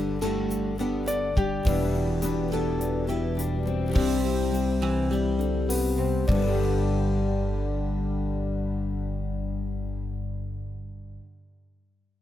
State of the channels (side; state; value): both; normal; correlation 0.87